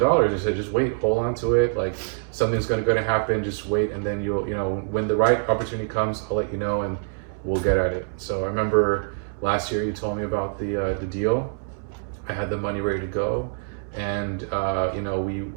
I said, just wait, hold on to it. Something's going to happen. Just wait, and then you'll, when the right opportunity comes, I'll let you know, and we'll get at it. So I remember last year you told me about the deal. I had the money ready to go, and I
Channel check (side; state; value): left; silent; 62 dB below the other